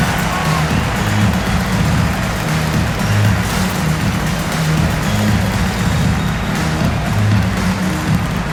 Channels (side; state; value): both; identical; correlation 1.00